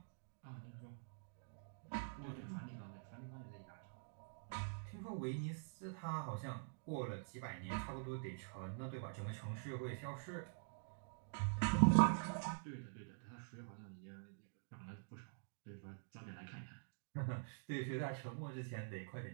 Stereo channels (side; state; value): left; silent; digital silence